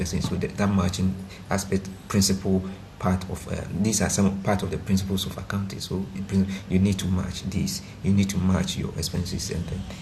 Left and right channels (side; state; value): both; identical; correlation 1.00